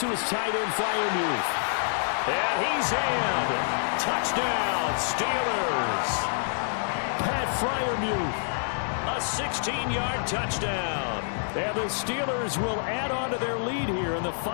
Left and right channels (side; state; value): right; silent; 60 dB below the other